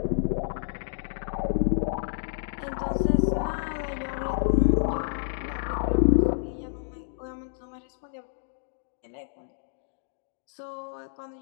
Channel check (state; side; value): silent; right; digital silence